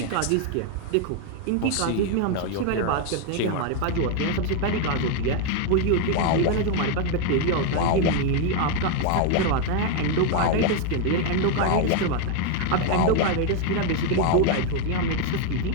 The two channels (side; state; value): both; different; correlation 0.01